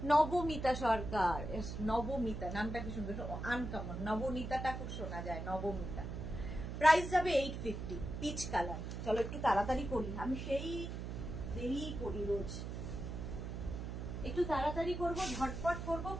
নবমিতা সরকার, নবমিতা নামটা কি সুন্দর, আনকমন, নবনীতাটা খুব শোনা যায়, নবমিতা। প্রাইস যাবে 850, পিচ কালার। চলো একটু তাড়াতাড়ি করি, আমি সেই দেরি করি রোজ, একটু তাড়াতাড়ি করবো, ঝটপট করবো,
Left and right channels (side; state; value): right; noise; hum, 6 dB below the sound